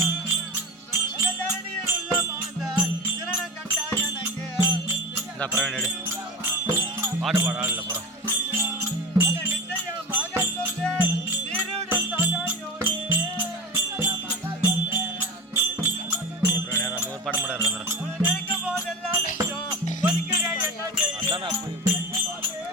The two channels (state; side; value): normal; both; correlation 0.29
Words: பிரவீன் எடு பாட்டு பாட ஆள் இல்லை போகிறோம். தானே போய்